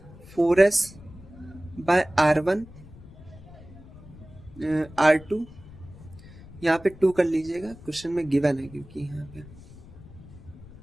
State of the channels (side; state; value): left; noise; rumble, 19 dB below the sound